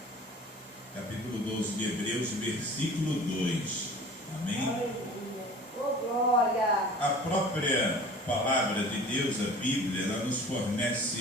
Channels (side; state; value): both; normal; correlation 0.43